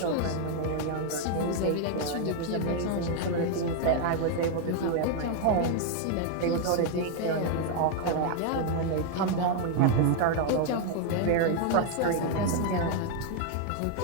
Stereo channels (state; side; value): different; both; correlation 0.01